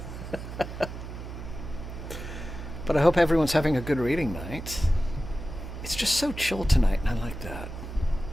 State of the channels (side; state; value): right; noise; hum, 9 dB below the sound